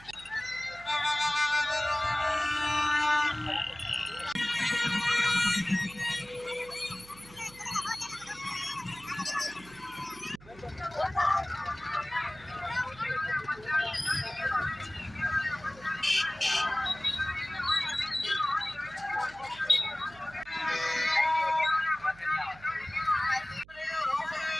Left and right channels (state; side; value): noise; right; hum, 22 dB below the sound